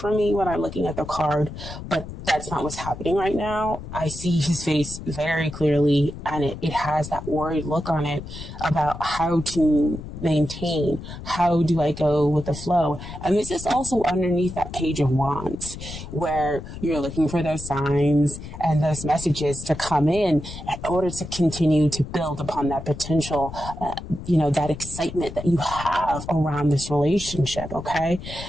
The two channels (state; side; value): noise; left; rumble, 11 dB below the sound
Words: me when I'm looking at the card, but that's not what's happening right now. I see his face very clearly, and it has that worried look on it about how to maintain, how do I go with the flow. And this is also underneath that Page of Wands, where you're looking for those signs and those messages to come in order to continue to build upon that potential, that excitement that you have around this relationship. Okay.